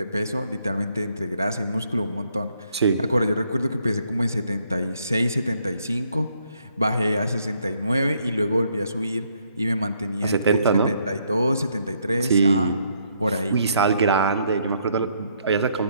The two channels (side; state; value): both; inverted; correlation -0.71